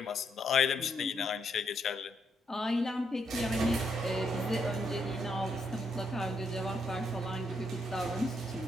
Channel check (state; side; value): normal; both; correlation 0.76